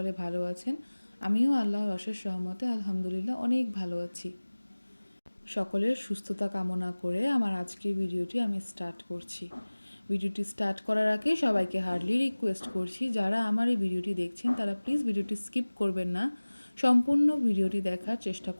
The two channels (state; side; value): inverted; both; correlation -1.00